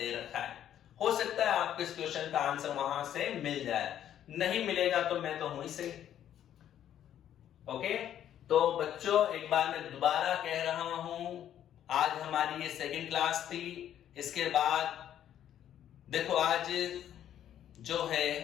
रखा है। हो सकता है आपको इस क्वेश्चन का आंसर वहां से मिल जाए, नहीं मिलेगा तो मैं तो हूं ही सही। ओके, तो बच्चों एक बार मैं दोबारा कह रहा हूं, आज हमारी ये सेकंड क्लास थी। इसके बाद देखो आज जो है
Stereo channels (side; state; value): right; quieter; 10.7 dB